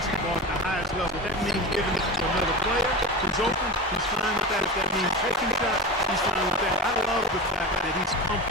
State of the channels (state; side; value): normal; both; correlation 0.27